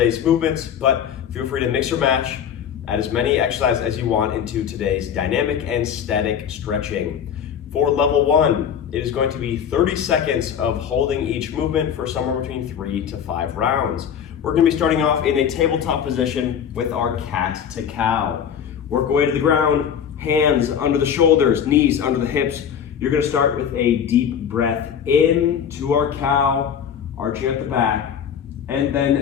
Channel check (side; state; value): right; quieter; 8.3 dB